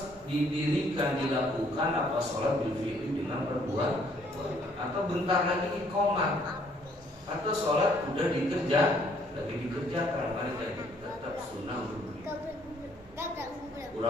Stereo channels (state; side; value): normal; both; correlation 0.64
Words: didirikan dilakukan apa sholat bil fi'li dengan perbuatan, atau bentar lagi iqamat, atau sholat udah lagi dikerjakan, maka tetap sunnah untuk